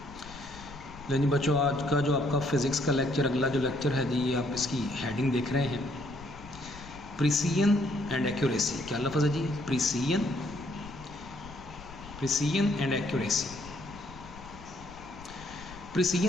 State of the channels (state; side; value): noise; left; rumble, 17 dB below the sound